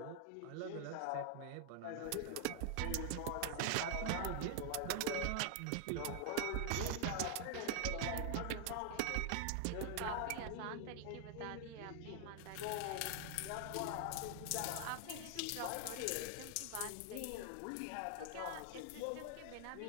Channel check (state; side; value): different; both; correlation 0.00